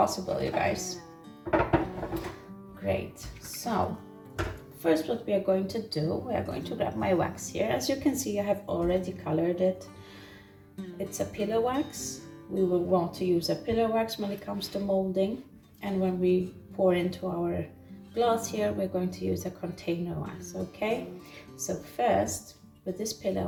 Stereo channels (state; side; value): identical; both; correlation 1.00